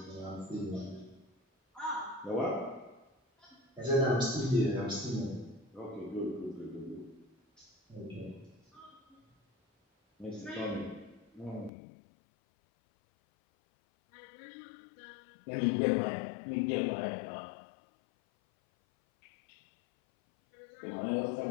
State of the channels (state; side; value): drops out; right; at 11.7 s